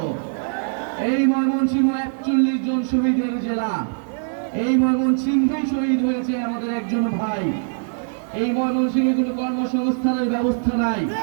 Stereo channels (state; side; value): silent; left; digital silence